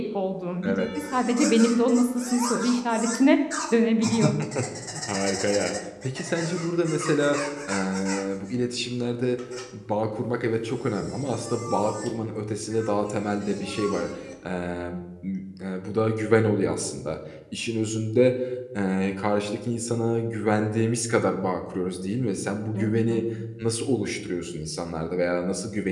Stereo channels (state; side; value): identical; both; correlation 1.00